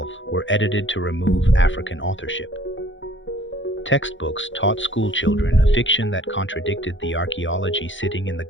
were edited to remove African authorship. Textbooks taught schoolchildren a fiction that contradicted the archaeology sitting in the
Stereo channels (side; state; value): right; late; 0.55 ms